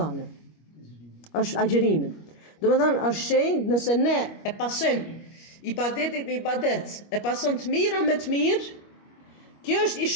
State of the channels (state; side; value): late; right; 25 ms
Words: Është agjërimin. Domethënë është shenjë nëse ne e pasojmë ibadetin me ibadet, e pason të mira me të mirë, kjo është